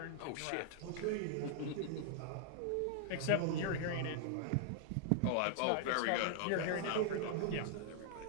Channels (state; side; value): different; both; correlation -0.01